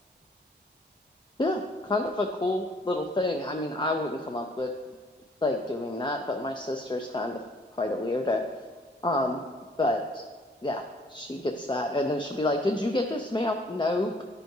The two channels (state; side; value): normal; both; correlation 0.59